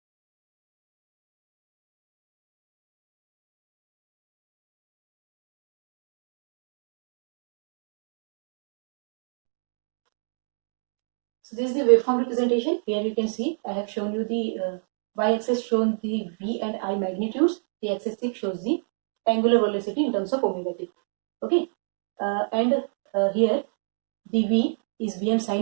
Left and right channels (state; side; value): silent; left; digital silence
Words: So this is the waveform representation. Here you can see I have shown you the y-axis shown the V and I magnitudes. The axis shows the angular velocity in terms of omega t. Okay, here the V is Vm